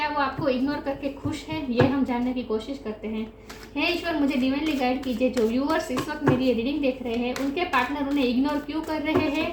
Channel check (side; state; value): both; identical; correlation 1.00